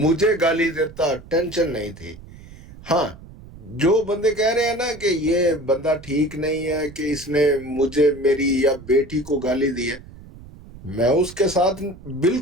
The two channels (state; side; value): noise; right; rumble, 19 dB below the sound